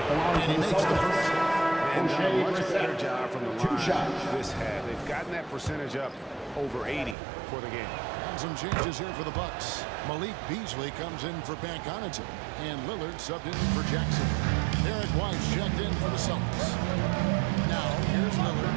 And he makes the first. And done a much better job from the line this half. They've gotten that percentage up over 80 for the game. And some changes here for the Bucks. Malik Beasley comes in for Pat Connaughton, and Lillard subbed in for Jackson. Derek White checked in for the Celtics. Now here's Lillard,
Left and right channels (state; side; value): drops out; left; at 7.2 s